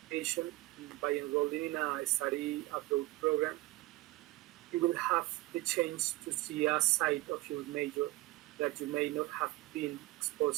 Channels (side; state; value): left; quieter; 19.7 dB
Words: by enrolling in a study abroad program. You will have the chance to see a side of your major that you may not have been